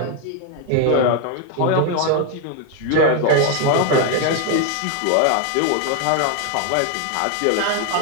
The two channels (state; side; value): different; both; correlation 0.01